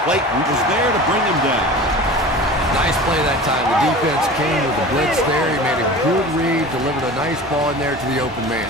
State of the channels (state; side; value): normal; both; correlation 0.37